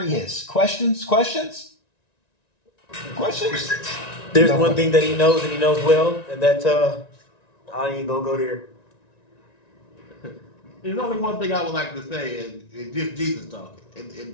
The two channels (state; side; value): late; right; 1.9 ms